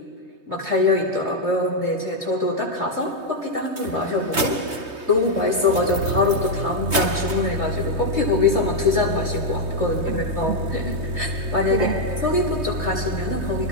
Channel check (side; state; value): left; late; 3.2 ms